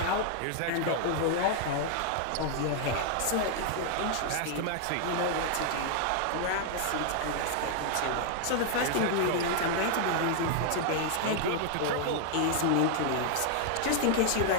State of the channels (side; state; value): both; different; correlation 0.00